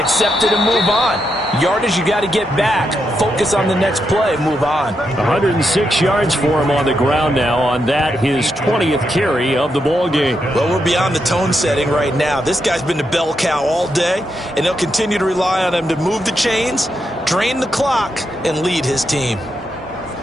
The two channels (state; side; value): normal; both; correlation 0.83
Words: accept it and move on. Yardage, you got to get back. Focus on the next play. Move on. 106 yards for him on the ground now on that, his 20th carry of the ball game. Well, we're beyond the tone setting right now. This guy's been the bell cow all day, and they'll continue to rely on him to move the chains, drain the clock, and lead his team.